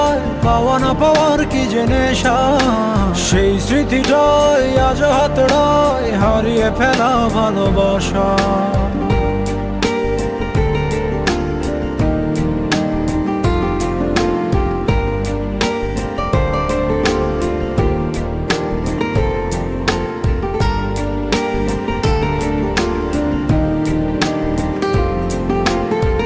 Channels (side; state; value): both; identical; correlation 1.00